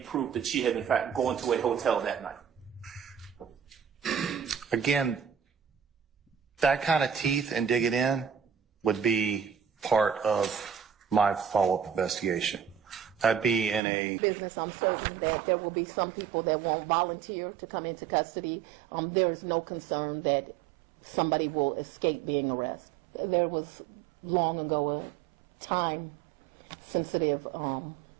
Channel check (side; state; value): left; drops out; at 13.8 s